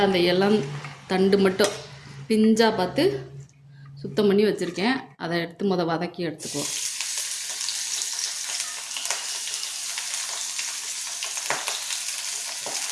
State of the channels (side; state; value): both; identical; correlation 1.00